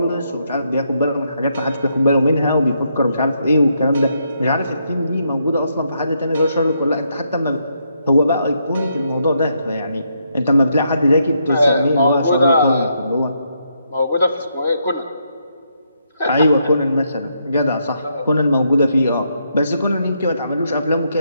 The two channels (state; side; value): inverted; both; correlation -0.77